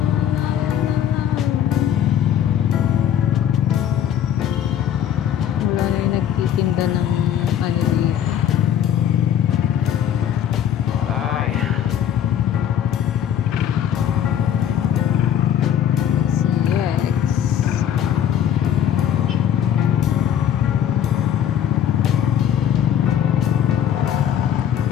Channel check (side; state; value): right; quieter; 9.5 dB